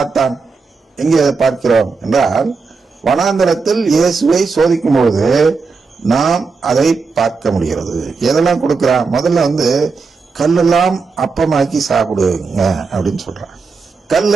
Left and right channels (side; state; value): left; quieter; 4.6 dB